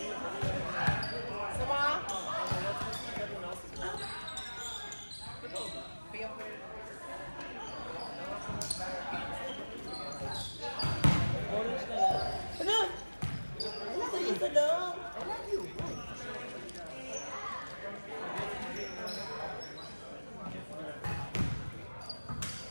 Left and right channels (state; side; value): inverted; both; correlation -1.00